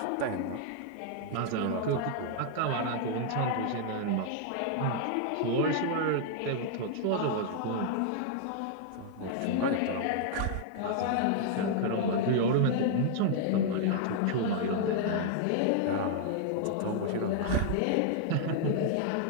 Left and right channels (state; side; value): different; both; correlation -0.01